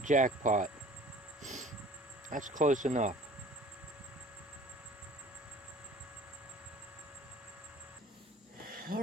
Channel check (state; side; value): normal; both; correlation 0.48